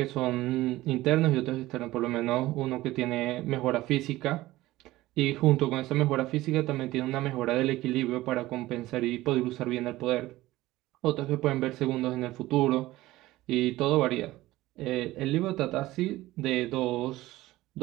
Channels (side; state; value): left; quieter; 17.3 dB